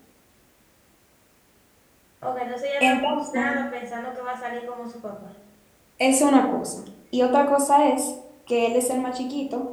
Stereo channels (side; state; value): both; identical; correlation 1.00